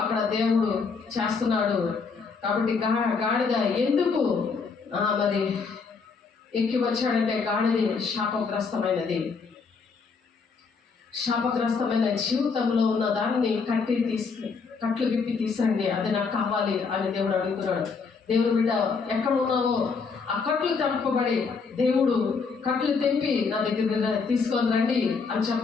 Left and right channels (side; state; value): right; quieter; 5.0 dB